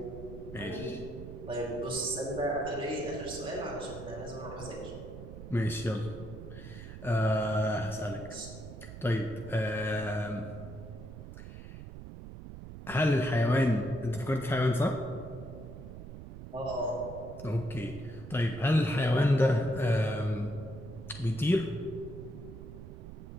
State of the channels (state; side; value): noise; right; rumble, 12 dB below the sound